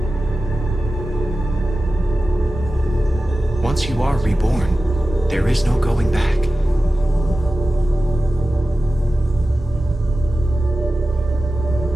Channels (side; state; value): both; normal; correlation 0.94